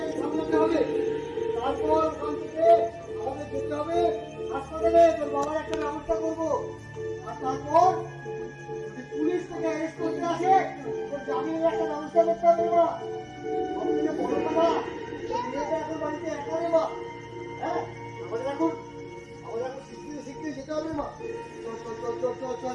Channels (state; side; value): identical; both; correlation 1.00